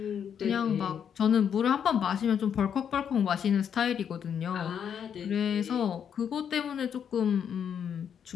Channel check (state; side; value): quieter; right; 8.1 dB